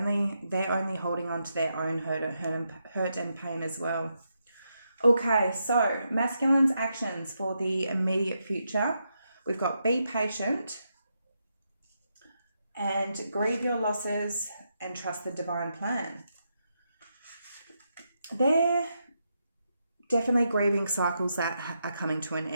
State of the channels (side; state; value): both; inverted; correlation -0.83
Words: only holding on to their own hurt and pain as well. Okay, so masculine's actions for the immediate future. We've got be patient and grieve your losses and trust the divine plan. They're definitely grieving cycles that are coming to an